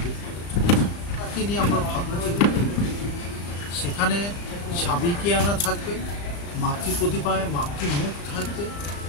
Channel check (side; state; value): right; late; 35 ms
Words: রূপ পেতে চলেছে। তাকে নিয়ে আমরা ভাবনা চিন্তা করি। সেখানে সাবিকিয়ানা থাকবে, মাতৃপ্রতিভায় মাতৃমুখ থাকবে,